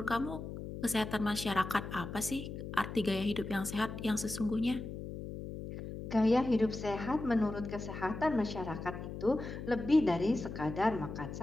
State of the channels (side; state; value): left; noise; hum, 8 dB below the sound